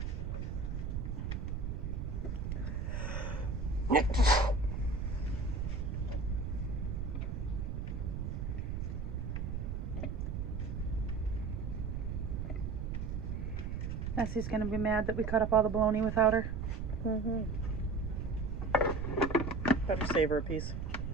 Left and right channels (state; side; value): noise; right; rumble, 2 dB below the sound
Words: Nessie's gonna be mad that we cut up all the bologna without her. Mm-hmm. Better save her a piece.